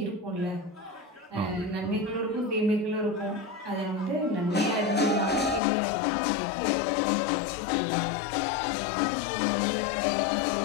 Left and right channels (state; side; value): drops out; right; at 5.6 s